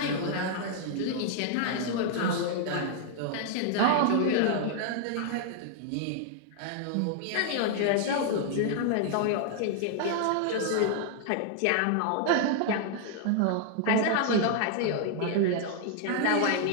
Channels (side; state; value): both; different; correlation 0.00